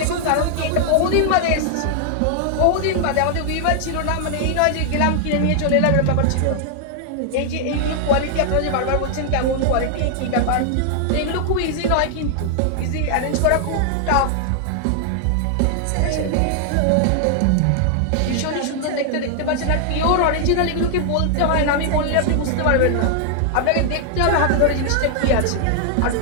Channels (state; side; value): different; both; correlation 0.00